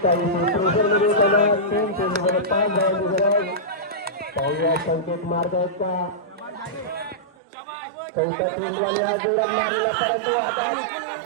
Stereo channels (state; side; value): drops out; left; at 7.3 s